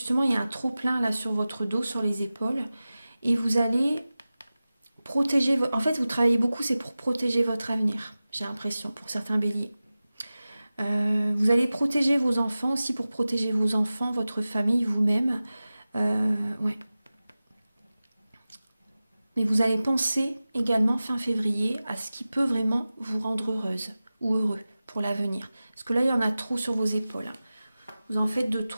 il y a un trop-plein là sur votre dos, sur les épaules. Et vous allez protéger, en fait vous travaillez beaucoup, c'est pour protéger votre avenir, j'ai l'impression, pour certains béliers. Vous allez protéger vos enfants aussi, pour protéger vos enfants, votre famille, vous-même. Ouais. Mais vous allez penser également fin février à ce qui peut vraiment vous rendre heureuse ou heureux pour l'avenir. Parce que là, il y en a trop sur vos épaules. Vous en faites de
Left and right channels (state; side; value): inverted; both; correlation -0.96